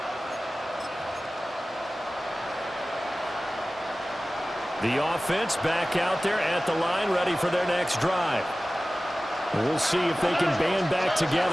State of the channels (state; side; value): normal; both; correlation 0.97